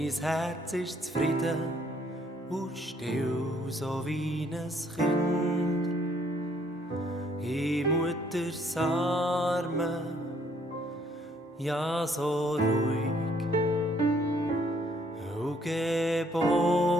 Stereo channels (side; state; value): both; normal; correlation 0.65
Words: Herz ist zufrieden und still, so wie ein Kind. In Mutters Armen, ja so ruhig und